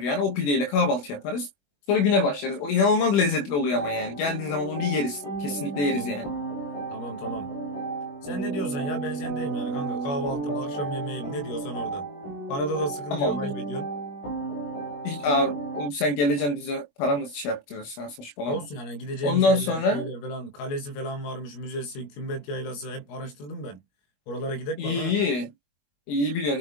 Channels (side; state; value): right; late; 21 ms